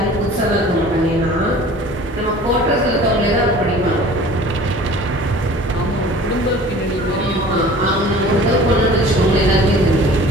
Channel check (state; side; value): normal; both; correlation 0.45